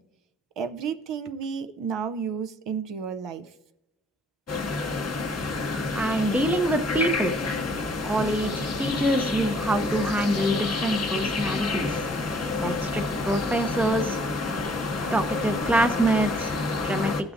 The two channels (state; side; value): normal; both; correlation 0.61